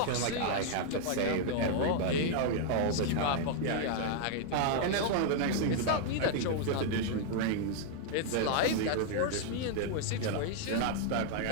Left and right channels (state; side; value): different; both; correlation -0.01